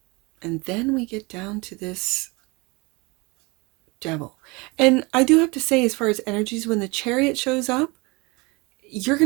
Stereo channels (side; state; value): left; quieter; 26.3 dB